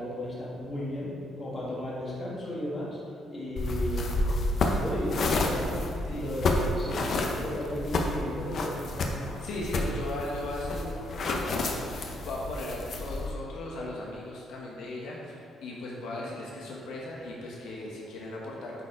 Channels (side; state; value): both; normal; correlation 0.74